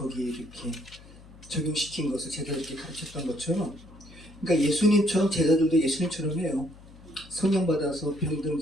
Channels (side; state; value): left; noise; hum, 21 dB below the sound